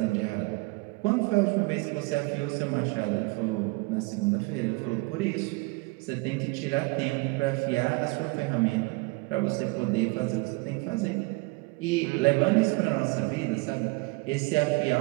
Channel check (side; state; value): left; quieter; 25.9 dB